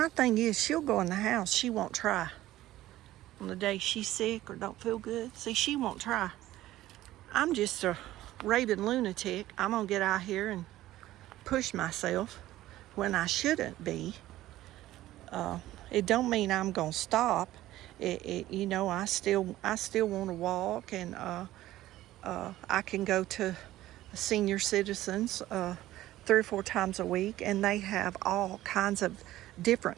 thing is, she'll go in the house. She won't try. On the day she's sick or don't feel good, see, she won't try. I'm just a raving lunatic. I'm gonna get out here and push myself when I shouldn't be. It don't mean I'm gonna stop. You know, I still want to walk, and I can go to senior citizens 3 or 4 times a week, and they have all kinds of different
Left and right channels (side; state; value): left; quieter; 15.1 dB